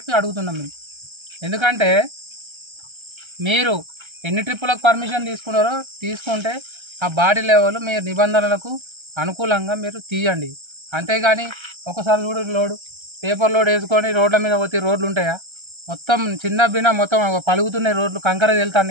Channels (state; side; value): late; left; 1.3 ms